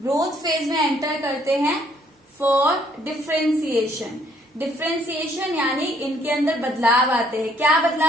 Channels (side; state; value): both; normal; correlation 0.65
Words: फेज में एंटर करते हैं फॉर डिफरेंशिएशन। डिफरेंशिएशन यानी इनके अंदर बदलाव आते हैं। क्या